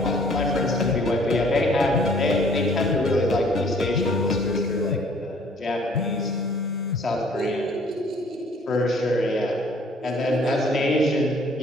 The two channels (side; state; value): both; normal; correlation 0.58